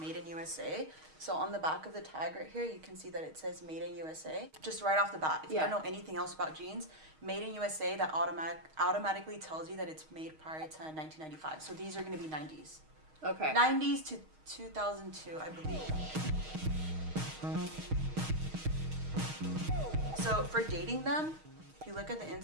in USA. So on the back of the tag right here, you can see that it says made in USA. Just right off the bat, if you don't know anything else about jeans, made in USA, that automatically tells you that it's made prior to 1995. So these are going to be 90s. Okay. 90s to 2002, I believe. So for dating them, if you look at the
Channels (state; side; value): late; left; 6.4 ms